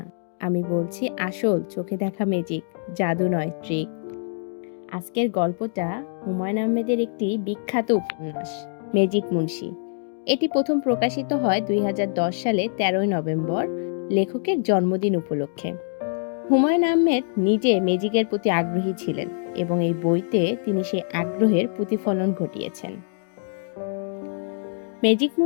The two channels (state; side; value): silent; right; digital silence